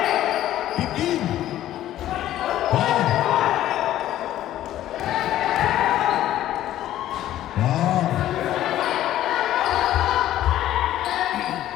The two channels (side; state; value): right; quieter; 13.0 dB